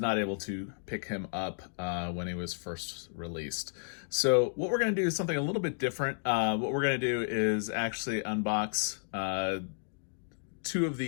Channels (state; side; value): silent; right; digital silence